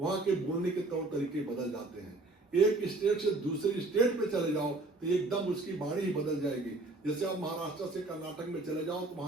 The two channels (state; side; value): quieter; left; 3.1 dB